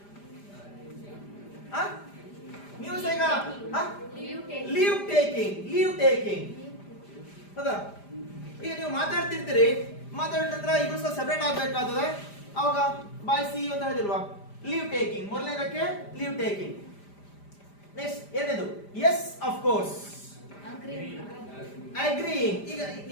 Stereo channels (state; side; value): late; right; 5.0 ms